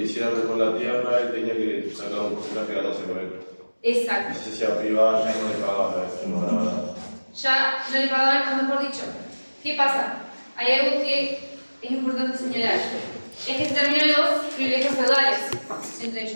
hiciera con la tierra, él tenía que sacar un porcentaje de ganárselo a él. Exacto. Y si se hacía privada, ya no le pagaba, no ganaba nada. Ya no le pagaban, o mejor dicho. ¿Qué pasa? Hay algo que es importante señalar. Es que se terminan los privilegios feudales entre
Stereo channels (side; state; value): both; inverted; correlation -1.00